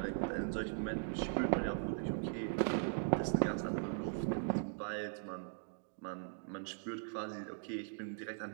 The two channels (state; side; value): silent; left; digital silence